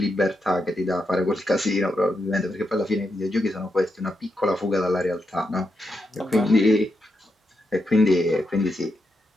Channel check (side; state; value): both; normal; correlation 0.84